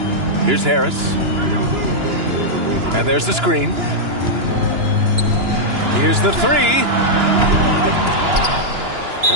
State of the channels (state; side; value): late; left; 2.9 ms